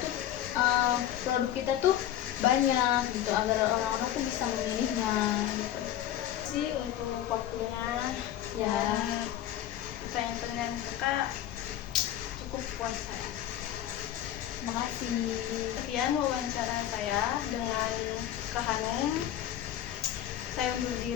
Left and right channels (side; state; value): right; quieter; 11.9 dB